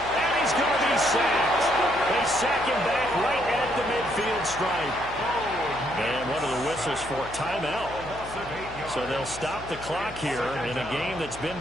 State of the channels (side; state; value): left; noise; hum, 15 dB below the sound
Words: And he's he's going to be sacked. They sack him back right at the midfield stripe. And one of the whistles for timeout. So they'll stop the clock here in a game that's been